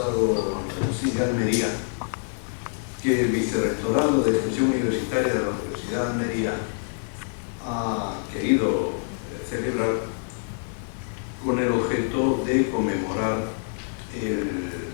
Andalusí de Almería, que el Vicerrectorado de Extensión Universitaria de la Universidad de Almería ha querido celebrar con el objeto de conmemorar el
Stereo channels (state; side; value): silent; right; digital silence